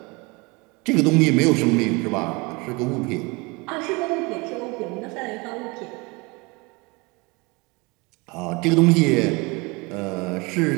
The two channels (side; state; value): left; quieter; 26.8 dB